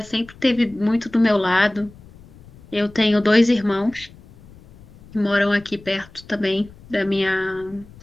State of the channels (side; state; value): left; noise; rumble, 23 dB below the sound